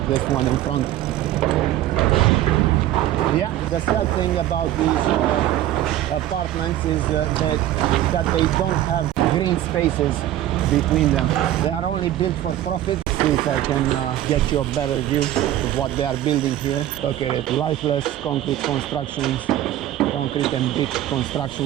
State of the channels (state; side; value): quieter; left; 13.2 dB